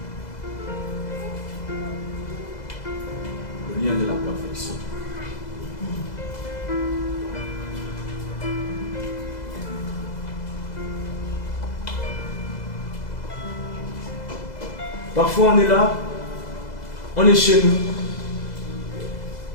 Le lien de la perfection. Parfois on est là, on est chez nous.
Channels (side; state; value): right; late; 2.0 ms